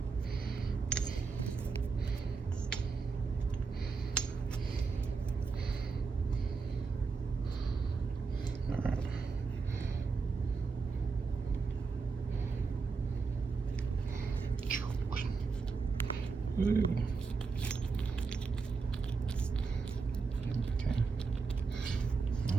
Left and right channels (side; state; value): left; quieter; 4.7 dB